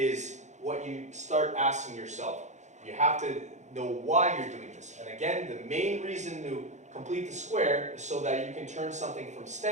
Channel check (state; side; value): late; left; 0.34 ms